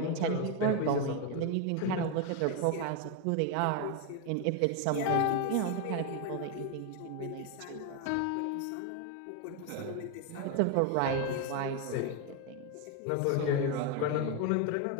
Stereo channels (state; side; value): different; both; correlation 0.01